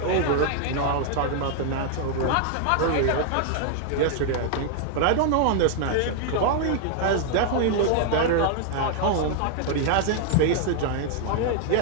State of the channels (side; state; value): both; different; correlation 0.00